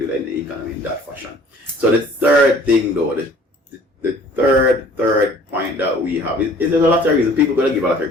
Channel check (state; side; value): normal; both; correlation 0.52